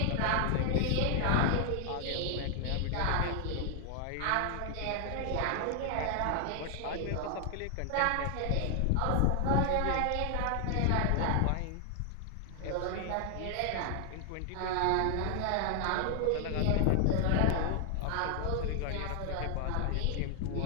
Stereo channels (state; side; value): different; both; correlation 0.00